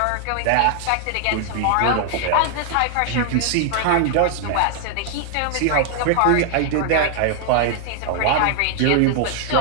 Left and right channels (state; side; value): different; both; correlation 0.00